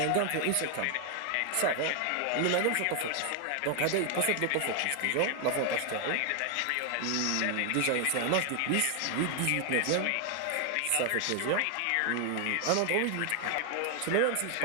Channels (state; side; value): different; both; correlation 0.00